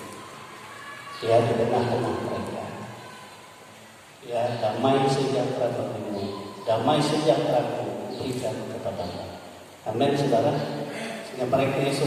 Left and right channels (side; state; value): both; identical; correlation 1.00